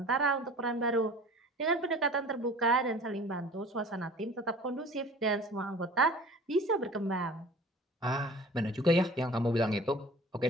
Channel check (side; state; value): both; normal; correlation 0.44